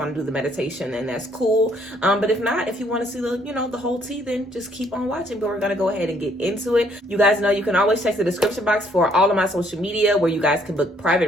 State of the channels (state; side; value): normal; both; correlation 0.66